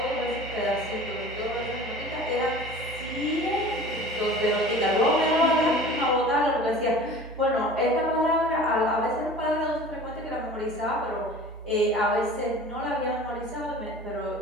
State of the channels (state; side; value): normal; both; correlation 0.42